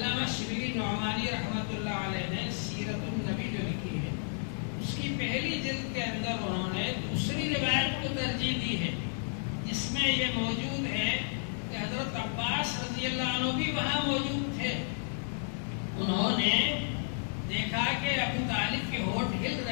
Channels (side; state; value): right; silent; digital silence